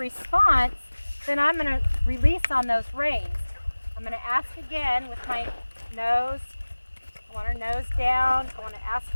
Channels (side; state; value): both; inverted; correlation -1.00